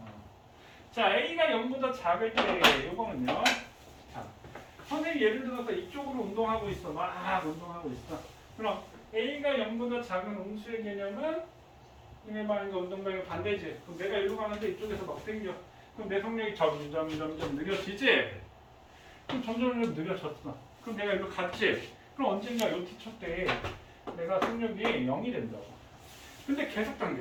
자, A가 0보다 작을 때 요거는요. 자, 선생님 예를 들어서 이쪽으로 운동하고 있어. 막 운동하고 있어. 그럼 A가 0보다 작은 음수의 개념은 이메 방향과 운동 방향 반대지. 그럼 내가 이리로 가는데 이쪽에서 막 당겨. 그럼 내 속력이 점점 느려지지? 그럼 점점 느려졌어. 그럼 내가 이리로 갔지? 그럼 언젠가 요 t초 때 내가 속력이 0이 된다고. 근데 계속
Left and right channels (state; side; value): identical; both; correlation 1.00